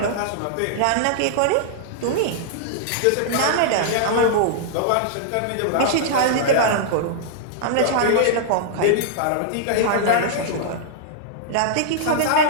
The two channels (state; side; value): different; both; correlation -0.01